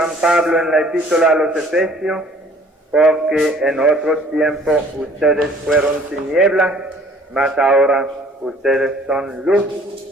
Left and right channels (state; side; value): normal; both; correlation 0.54